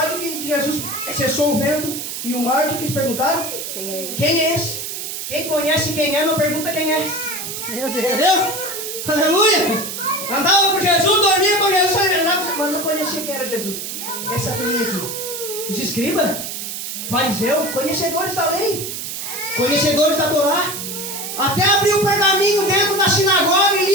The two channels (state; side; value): noise; right; hiss, 6 dB below the sound